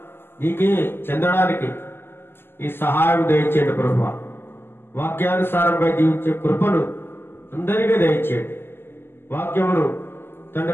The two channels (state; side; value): late; right; 0.11 ms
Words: నీకే చెందడానికి ఈ సహాయం దయచేయండి ప్రభా. వాక్యానుసారంగా జీవించే కృపను అందరికీ దయచేయండి. వాక్యమును